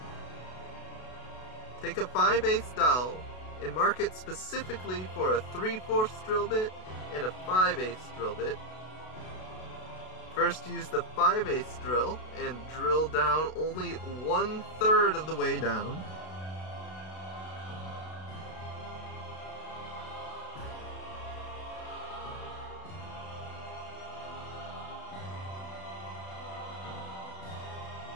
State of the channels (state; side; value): late; right; 32 ms